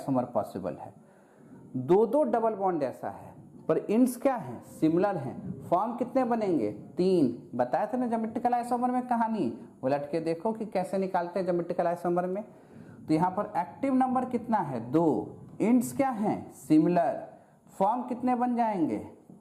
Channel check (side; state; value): both; identical; correlation 1.00